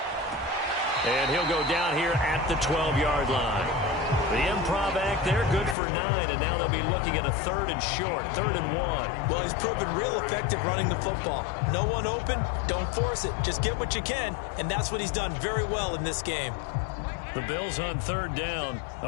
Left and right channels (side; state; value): right; drops out; at 5.8 s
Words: And he'll go down here at the 12-yard line. The improv act there, good for 9, and now they'll be looking at a 3rd and short, 3rd and 1. Well, he's proven real effective running the football. No one open, don't force it. Just get what you can, and that's what he's done very well in this game. The Bills on 3rd down.